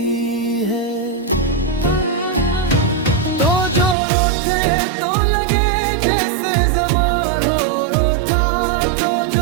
है। तो जो रोते तो लगे जैसे ज़मां हो रोता, तो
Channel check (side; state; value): left; drops out; at 4.0 s